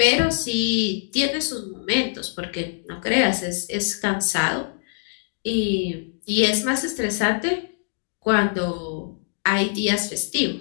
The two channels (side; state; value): right; silent; digital silence